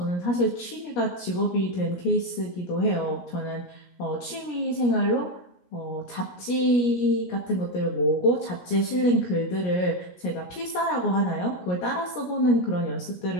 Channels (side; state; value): right; late; 17 ms